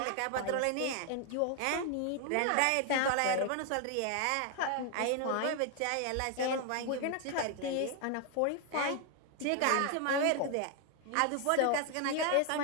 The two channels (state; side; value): different; both; correlation 0.01